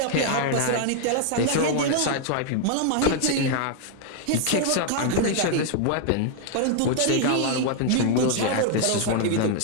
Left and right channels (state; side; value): different; both; correlation 0.00